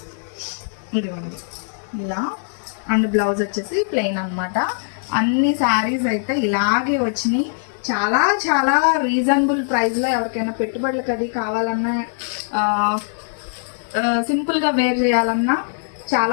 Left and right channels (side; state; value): right; silent; digital silence